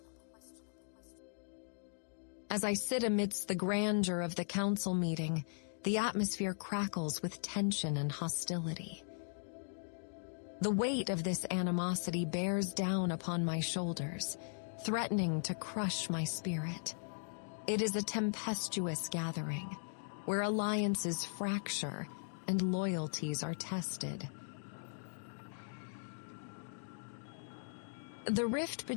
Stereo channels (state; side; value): silent; right; digital silence